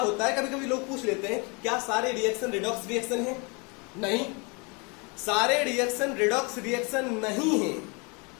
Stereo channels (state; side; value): quieter; right; 31.0 dB